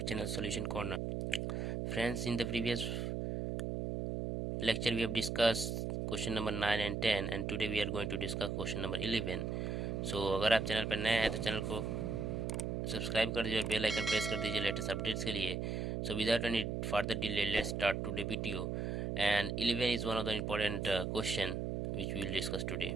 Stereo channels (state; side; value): noise; right; hum, 1 dB below the sound